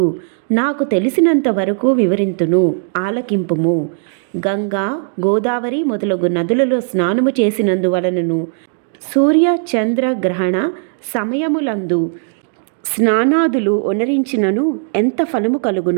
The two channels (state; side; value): silent; left; 68 dB below the other